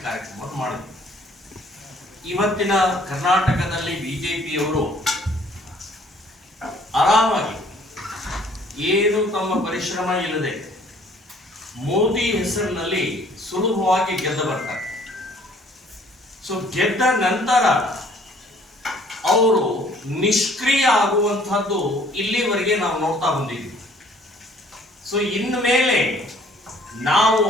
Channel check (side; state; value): both; normal; correlation 0.57